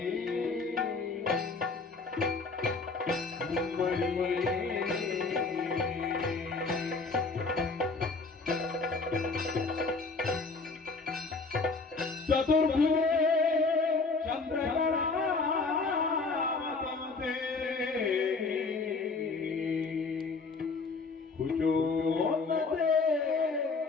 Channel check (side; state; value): right; quieter; 4.0 dB